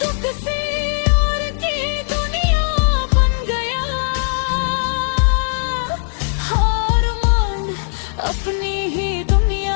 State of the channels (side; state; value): right; silent; digital silence